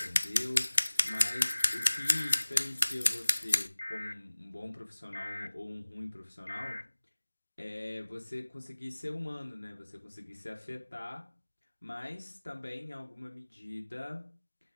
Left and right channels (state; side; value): inverted; both; correlation -1.00